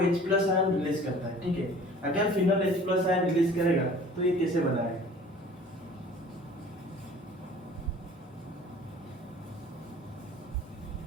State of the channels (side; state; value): both; normal; correlation 0.48